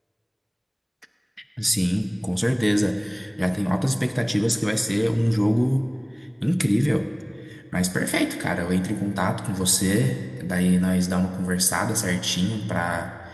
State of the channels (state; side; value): identical; both; correlation 1.00